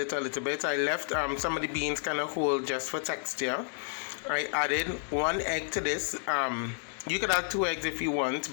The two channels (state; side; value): silent; right; 57 dB below the other